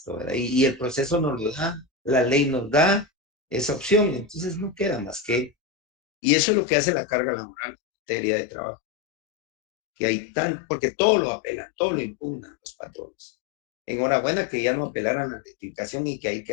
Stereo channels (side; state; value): right; drops out; at 5.5 s